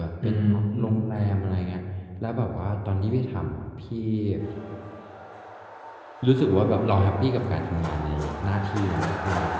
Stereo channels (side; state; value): both; identical; correlation 1.00